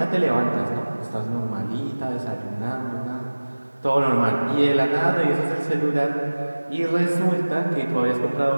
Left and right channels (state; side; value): inverted; both; correlation -1.00